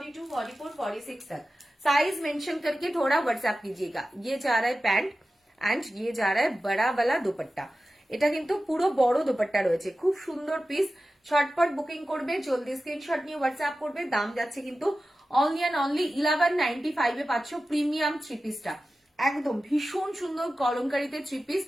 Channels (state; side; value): normal; both; correlation 0.94